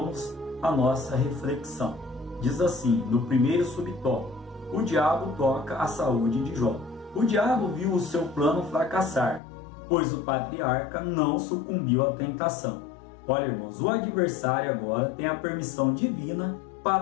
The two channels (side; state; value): right; drops out; at 9.4 s